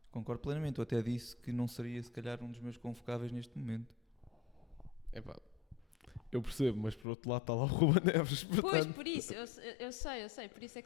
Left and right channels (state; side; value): drops out; right; at 7.1 s